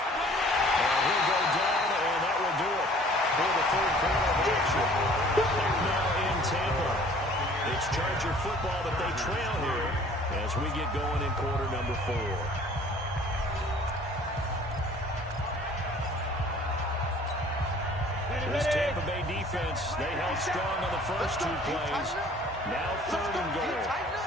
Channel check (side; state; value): both; normal; correlation 0.52